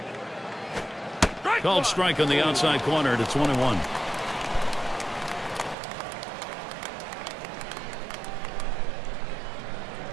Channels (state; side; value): drops out; left; at 5.8 s